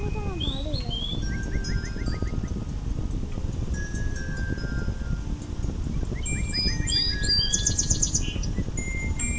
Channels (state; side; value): identical; both; correlation 1.00